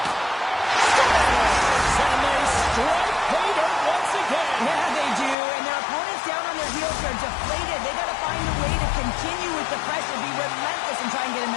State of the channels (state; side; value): drops out; right; at 5.4 s